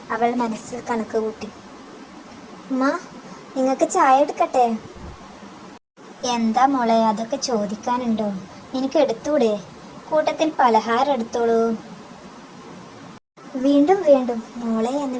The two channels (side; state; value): both; identical; correlation 1.00